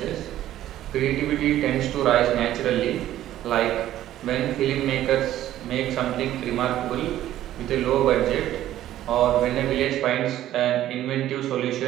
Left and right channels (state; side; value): quieter; left; 13.1 dB